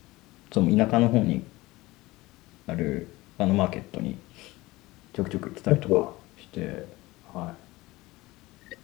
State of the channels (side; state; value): right; quieter; 20.0 dB